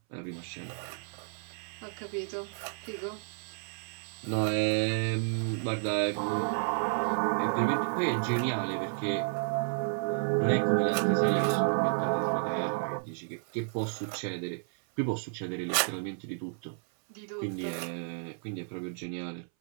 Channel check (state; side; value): silent; left; 57 dB below the other